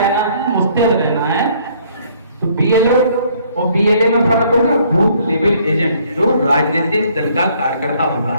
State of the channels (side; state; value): both; inverted; correlation -0.63